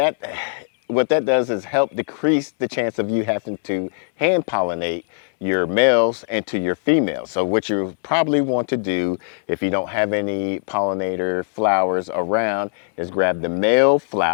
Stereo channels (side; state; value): right; silent; 65 dB below the other